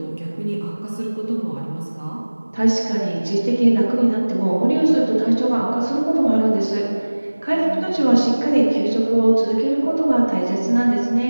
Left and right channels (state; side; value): inverted; both; correlation -1.00